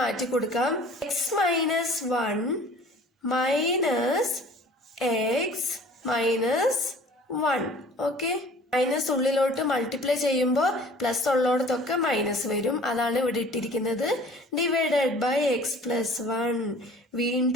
മാറ്റി കൊടുക്കാം. X minus 1 minus x minus 1. Okay, minus ഉള്ളിലോട്ട് മൾട്ടിപ്ലൈ ചെയ്യുമ്പോൾ പ്ലസ് ഉള്ളോടത്തൊക്കെ മൈനസ് വരും. അതാണ് ഇവിടെ ഇട്ടിരിക്കുന്നത്. Divided by x plus 1.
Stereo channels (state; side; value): normal; both; correlation 0.48